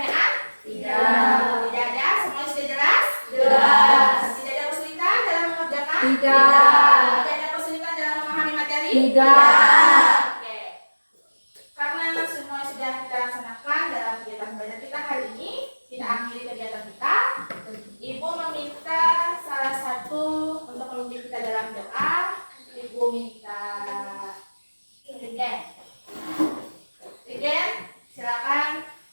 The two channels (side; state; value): both; inverted; correlation -1.00